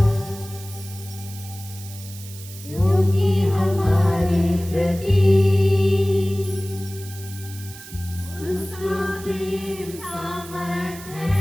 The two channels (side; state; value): right; noise; hiss, 16 dB below the sound